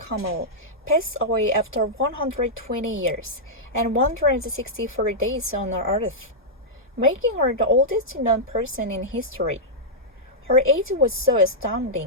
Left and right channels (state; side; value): normal; both; correlation -0.09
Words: Camel passed away after 120 years and 164 days on Earth, making her the oldest known person in history. Her age was so